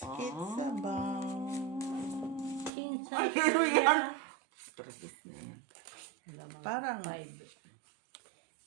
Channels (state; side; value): drops out; left; at 2.7 s